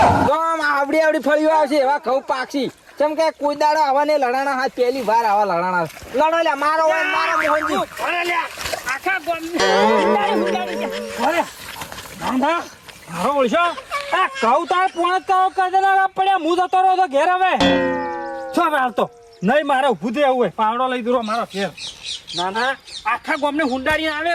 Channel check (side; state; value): both; identical; correlation 1.00